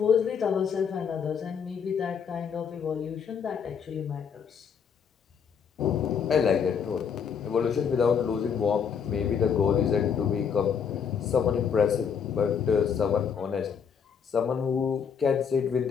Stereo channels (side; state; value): right; quieter; 7.0 dB